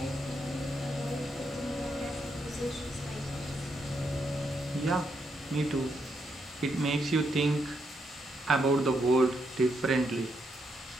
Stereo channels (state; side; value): normal; both; correlation 0.79